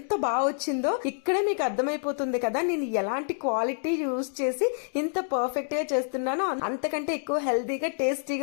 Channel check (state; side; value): silent; right; digital silence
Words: బాగా వచ్చిందో. ఇక్కడే మీకు అర్థమైపోతుంది కదా నేను ఎలాంటి క్వాలిటీ యూజ్ చేసి ఇంత పర్ఫెక్ట్ గా చేస్తున్నాను. అంతకంటే ఎక్కువ హెల్తీగా